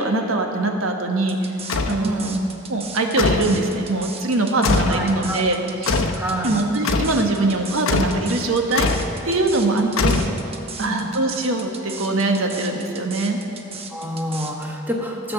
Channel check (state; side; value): normal; both; correlation 0.35